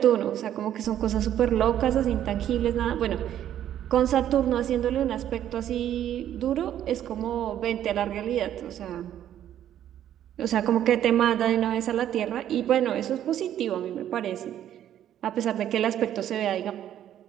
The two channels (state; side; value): quieter; left; 11.0 dB